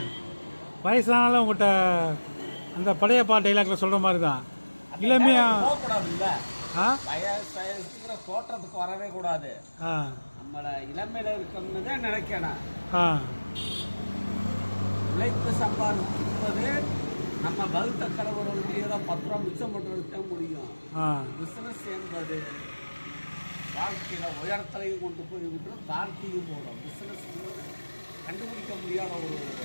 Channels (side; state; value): both; inverted; correlation -1.00